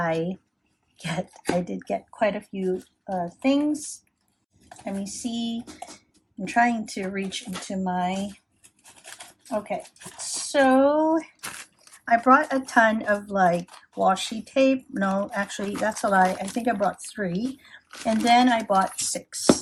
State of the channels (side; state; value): both; identical; correlation 1.00